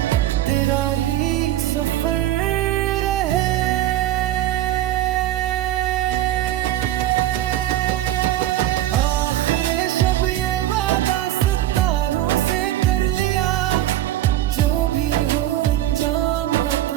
तेरा ही सफर रहे। आखिरे शब ये वादा सितारों से कर लिया, जो भी हो अंजाम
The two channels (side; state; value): left; quieter; 13.6 dB